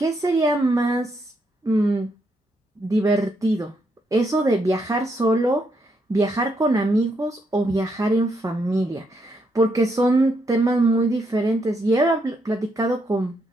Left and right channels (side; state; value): both; normal; correlation 0.77